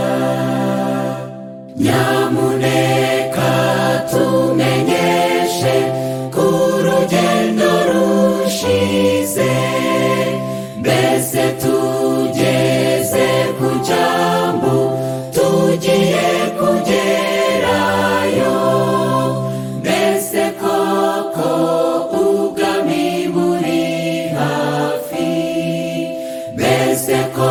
Nyamuneka tumenyeshe ko urugendo rushize, mbese tugeze ku cyambu tugiye kugerayo. Mbese koko ubwami buri hafi, mbese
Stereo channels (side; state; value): both; identical; correlation 1.00